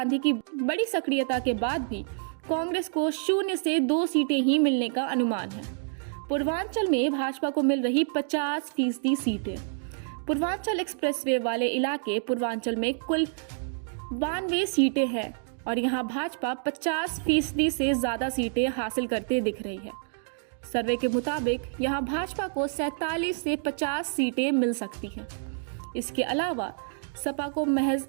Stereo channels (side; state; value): left; silent; digital silence